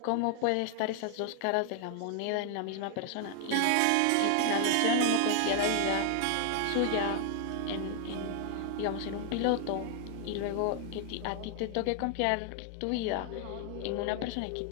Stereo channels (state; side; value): different; both; correlation 0.00